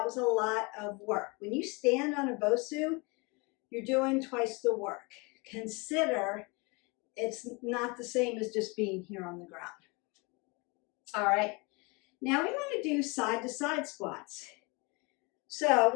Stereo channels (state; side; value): quieter; right; 28.4 dB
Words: was a lot of work. When you stand on a BOSU, you're doing twice the work. Consider it's not the same as just being here on the ground. All right, now we want to do side-to-side squats. So I